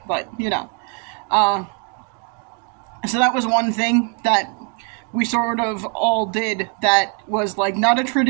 but, So that was one thing that we sort of all did that was like not a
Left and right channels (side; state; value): left; quieter; 37.5 dB